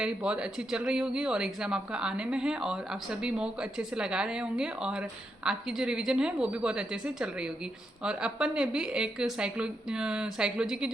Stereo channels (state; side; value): normal; both; correlation 0.83